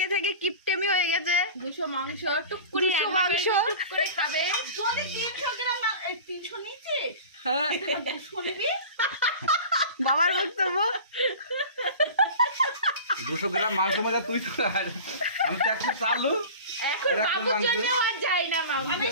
থেকে কিপটেমি হয়ে গেছে। 200 মাংস টুক করে 200 মাংস টুক করে খাবে। যদি 300 গ্রাম 300 নিচে হ্যাঁ 200 নিবি। বাবার বক্তব্য। 200 গ্রাম মাংস মজা তুই তো আর আমি তো একটা চালু এখন আর একটা বাবুর মাংস। জন্যও আর যায় না মাংস, আমি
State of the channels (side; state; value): both; inverted; correlation -0.36